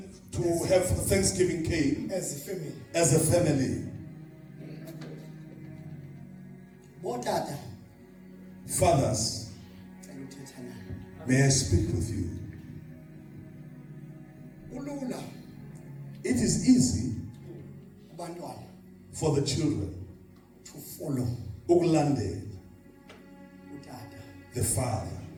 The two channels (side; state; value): both; identical; correlation 1.00